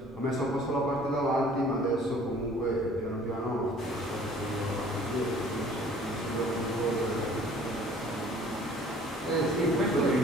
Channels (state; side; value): normal; both; correlation 0.52